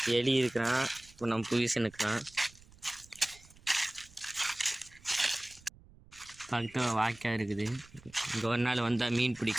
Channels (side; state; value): right; noise; rumble, 24 dB below the sound